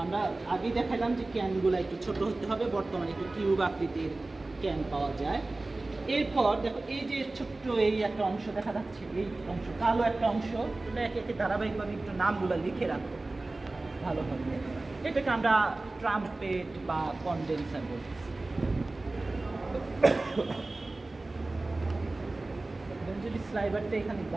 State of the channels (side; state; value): left; quieter; 3.1 dB